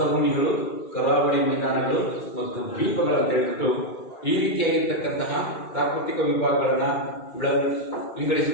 ಕರಾವಳಿ ಮೈದಾನಗಳು ಮತ್ತು ದ್ವೀಪಗಳನ್ನು ಹೇಳ್ಬಿಟ್ಟು ಈ ರೀತಿಯಾಗಿರ್ತಕ್ಕಂತಹ ಪ್ರಾಕೃತಿಕ ವಿಭಾಗಗಳನ್ನ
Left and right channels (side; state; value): right; late; 2.2 ms